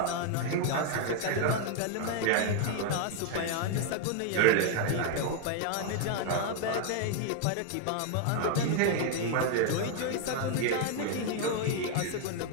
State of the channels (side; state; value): both; different; correlation 0.00